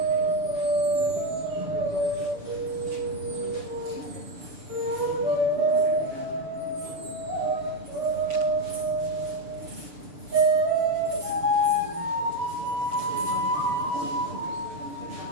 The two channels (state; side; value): late; left; 6.9 ms